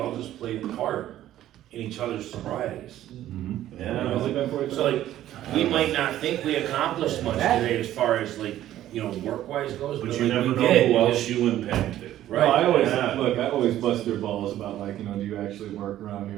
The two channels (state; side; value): quieter; left; 13.0 dB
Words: just played a part in each other's sobrieties. Yeah. So like, we might not think we accomplished much today as far as like, you know, work-wise goes, But but you like never we know did. who else you impacted. Right? No, I always, Yeah. look, I always bust their balls about like, you know, do you actually work around